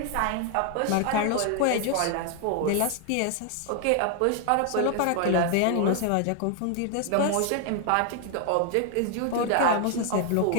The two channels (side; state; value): both; different; correlation 0.00